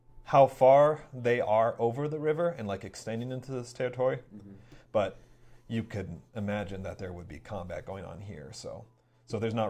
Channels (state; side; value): identical; both; correlation 1.00